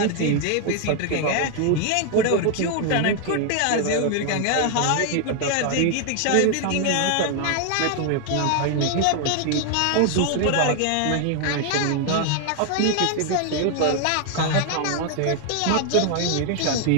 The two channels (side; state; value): both; different; correlation 0.00